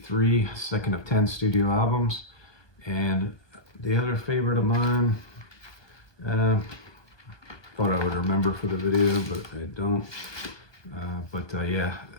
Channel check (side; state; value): right; late; 1.2 ms